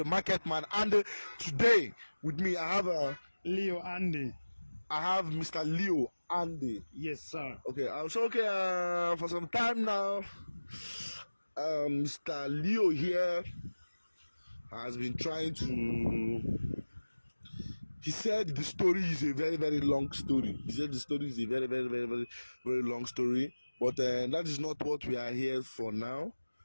Market Man, and today with me I have Leo Andy. I have Mr. Leo Andy. Yes, sir. Okay, for some time now, Mr. Leo here has been trying to. He said the story is a very, very long story. He said the story is a very, very, very, very, very long story. But that is not what we are here for now.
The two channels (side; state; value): both; inverted; correlation -1.00